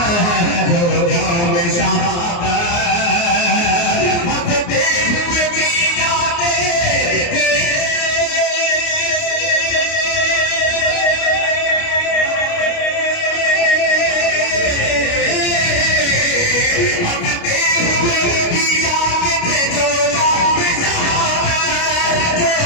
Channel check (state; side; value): late; right; 29 ms